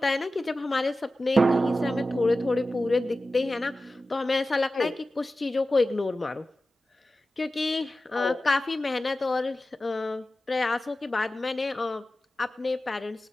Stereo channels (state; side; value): normal; both; correlation 0.94